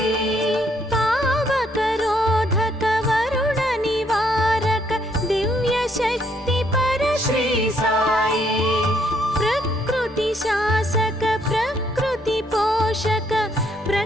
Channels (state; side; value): normal; both; correlation 0.70